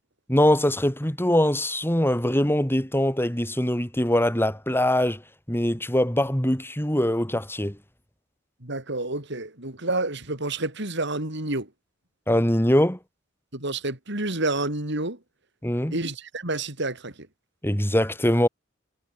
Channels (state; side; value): normal; both; correlation 0.76